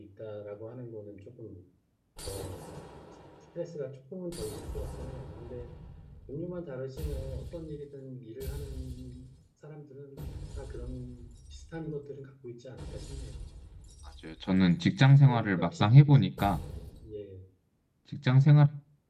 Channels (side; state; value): both; identical; correlation 1.00